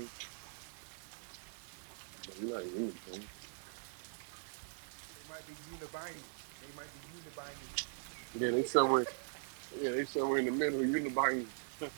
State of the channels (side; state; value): left; silent; digital silence